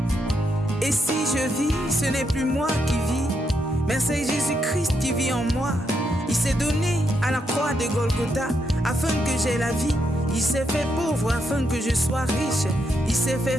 Et si je vis, ce n'est plus moi qui vis, mais c'est Jésus-Christ qui vit en moi. Il s'est donné à la croix de Golgotha afin que j'aie la vie. Il s'est fait pauvre afin que je sois riche. Il s'est fait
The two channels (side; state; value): both; normal; correlation 0.80